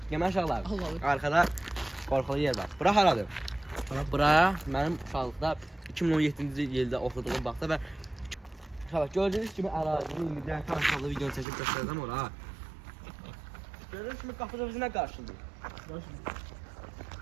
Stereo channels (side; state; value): left; drops out; at 11.5 s